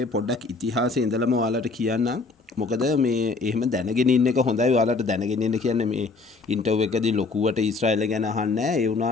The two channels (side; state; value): right; quieter; 4.0 dB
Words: පොඩ්ඩක් ඉතිහාසය ඉඳලම ඔයාලට කියන්නම්. මොකද මේ එහෙම දැනගෙන ඉන්න එක හොඳයි. ඔයාලට දැනගෙන ඉන්න කියන්නේ මේ ඉන්ටර්විව් එකදී ලොකුවට ඊශ්‍රායලය ගැන අහන්නේ නැහැ. ඒ